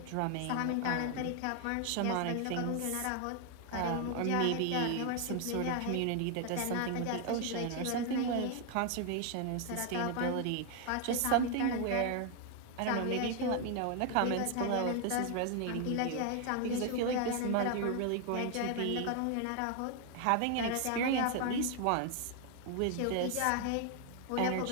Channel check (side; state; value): both; different; correlation 0.01